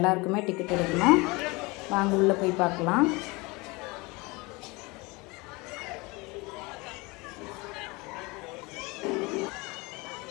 டிக்கெட் எடுக்கணும். வாங்க உள்ளே போய் பார்க்கலாம்.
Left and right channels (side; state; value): right; quieter; 25.1 dB